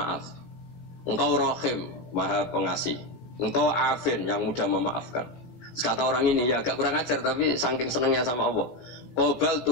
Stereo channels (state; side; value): late; right; 17 ms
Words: Engkau rahim, maha pengasih. Engkau afin, yang mudah memaafkan. Kata orang ini ya agak kurang ajar, tapi saking senengnya sama Allah. Qobal